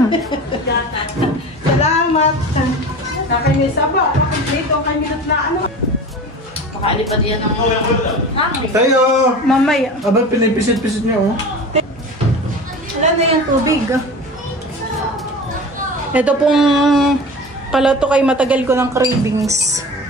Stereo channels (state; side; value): normal; both; correlation 0.34